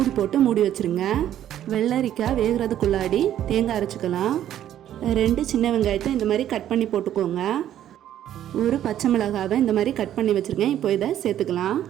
மூடி வச்சுருங்க. வெள்ளரிக்காய் வேகிறதுக்குள்ளாடி தேங்காய் அரைச்சிக்கலாம். 2 சின்ன வெங்காயத்தை இந்த மாதிரி கட் பண்ணி போட்டுக்கோங்க. ஒரு பச்சை மிளகாவை இந்த மாதிரி கட் பண்ணி வச்சுருக்கேன். இப்போ இதை சேர்த்துக்கலாம்.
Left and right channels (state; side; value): quieter; left; 11.3 dB